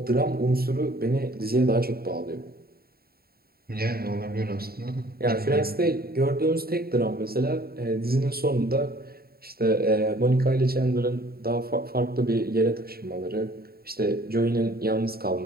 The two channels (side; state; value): left; late; 0.45 ms